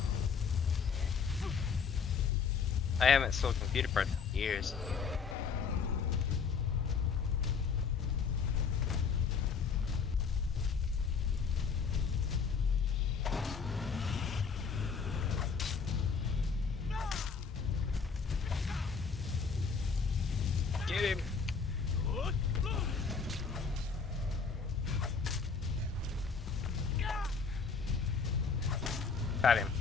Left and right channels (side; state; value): right; quieter; 5.6 dB